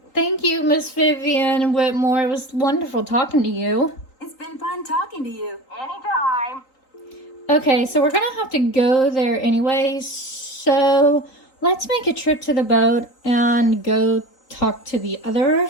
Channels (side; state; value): right; late; 3.8 ms